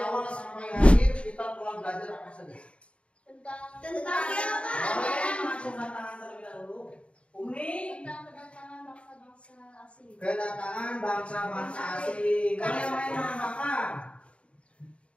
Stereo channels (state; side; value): late; right; 0.060 ms